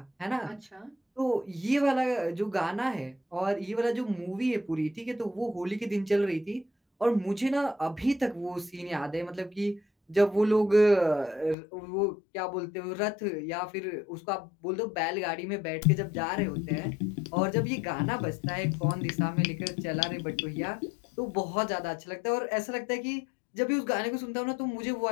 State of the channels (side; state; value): right; drops out; at 11.6 s